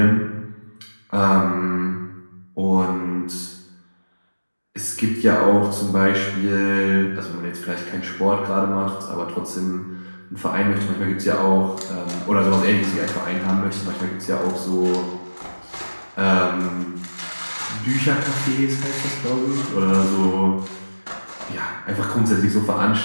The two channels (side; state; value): both; inverted; correlation -1.00